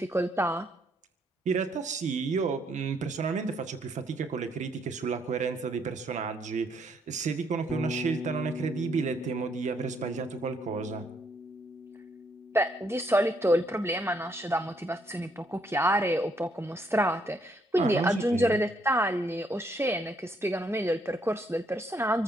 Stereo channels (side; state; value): both; normal; correlation 0.71